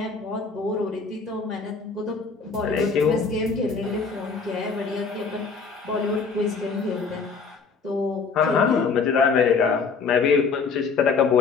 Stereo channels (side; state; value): right; quieter; 5.1 dB